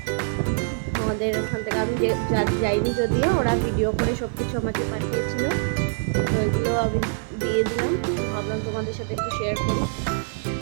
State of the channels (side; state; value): left; silent; 62 dB below the other